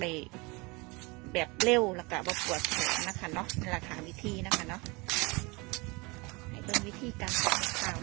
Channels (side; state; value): left; quieter; 26.6 dB